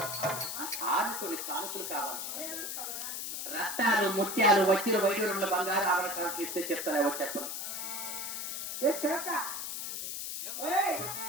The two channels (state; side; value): noise; left; hiss, 4 dB below the sound